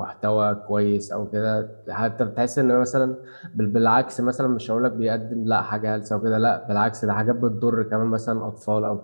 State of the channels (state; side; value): inverted; both; correlation -1.00